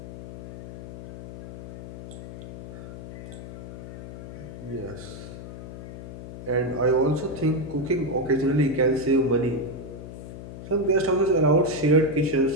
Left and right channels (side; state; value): left; noise; hum, 11 dB below the sound